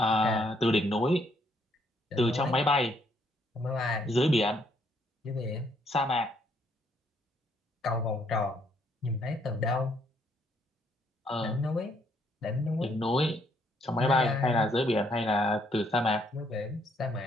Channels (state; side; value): normal; both; correlation 0.70